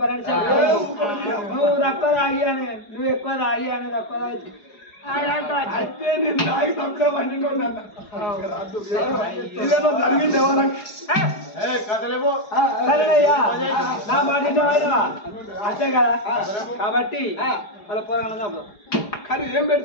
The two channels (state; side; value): late; right; 4.8 ms